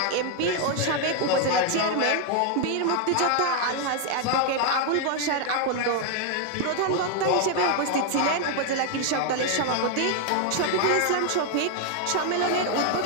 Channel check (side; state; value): both; different; correlation 0.01